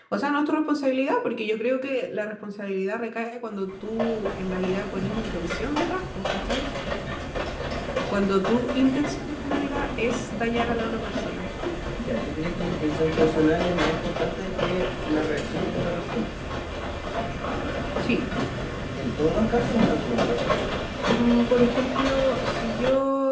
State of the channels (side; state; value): both; identical; correlation 1.00